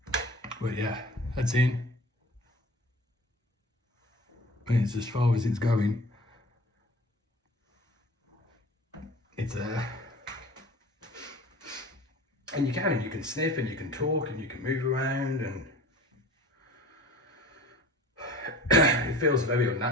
But yeah, that's in. It's as far as it's going. It's there. And you can sniff and you can talk and you can move around, and it feels very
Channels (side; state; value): both; normal; correlation 0.43